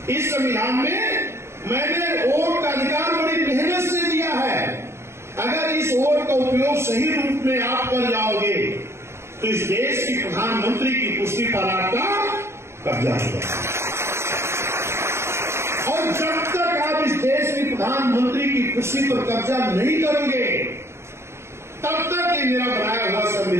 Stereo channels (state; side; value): late; left; 0.13 ms